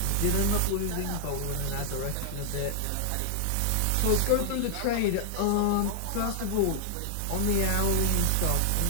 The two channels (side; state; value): both; different; correlation -0.01